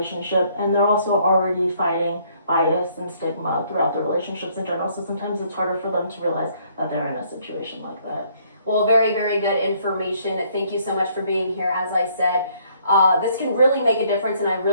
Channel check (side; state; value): both; inverted; correlation -0.66